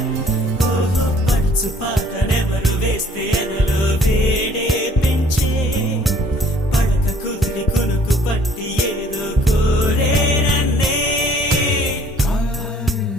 ఓహో పడుచు పాటనెవరు వేస్తే ఎదలో వేడే పెంచే పడక కుదిరి కొనుకు పట్టి ఏదో కోరే నన్నే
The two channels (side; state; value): both; normal; correlation 0.57